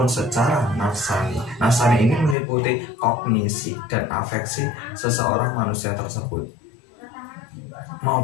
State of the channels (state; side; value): drops out; right; at 2.4 s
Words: secara nafsani. Nafsani ini meliputi kognisi dan afeksi seseorang manusia tersebut,